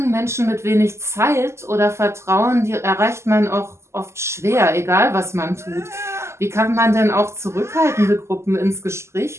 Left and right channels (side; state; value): left; late; 0.13 ms